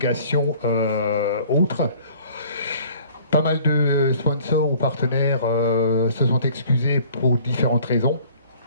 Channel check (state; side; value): inverted; both; correlation -0.53